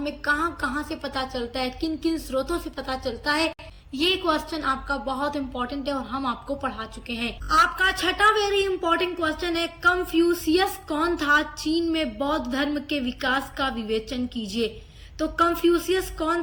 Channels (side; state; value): both; identical; correlation 1.00